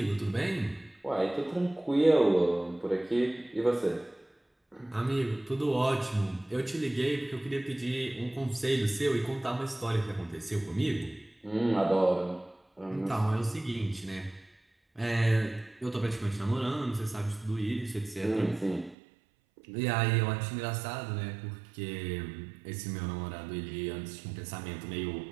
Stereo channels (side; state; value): left; drops out; at 18.9 s